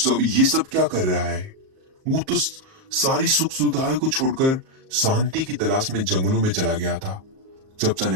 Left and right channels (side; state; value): left; late; 38 ms